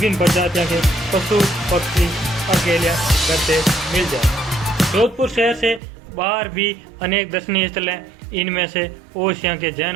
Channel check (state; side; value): drops out; left; at 5.8 s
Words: प्रजातियों के पशु पक्षी अकेले करते मिल जाए। जोधपुर शहर से बाहर भी अनेक दर्शनीय स्थल हैं। इनमें से ओसिया के